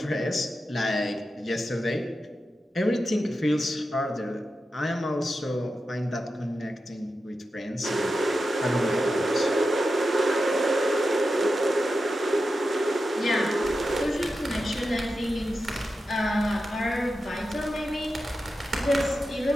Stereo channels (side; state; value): both; normal; correlation 0.90